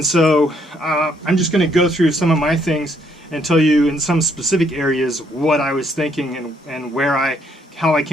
so I'm just going to go through some of my things and tell you in some specific areas what I was thinking and how I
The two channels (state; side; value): normal; both; correlation 0.70